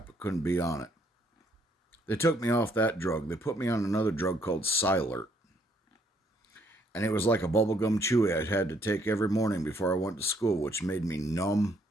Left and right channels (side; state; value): both; normal; correlation 0.69